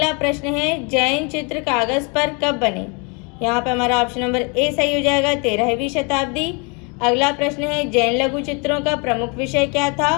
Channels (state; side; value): quieter; right; 33.2 dB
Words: प्रश्न है, जैन चित्र कागज पर कब बने? यहाँ पे हमारा ऑप्शन नंबर ए सही हो जाएगा, 13वीं शताब्दी। अगला प्रश्न है, जैन लघु चित्रों का प्रमुख विषय क्या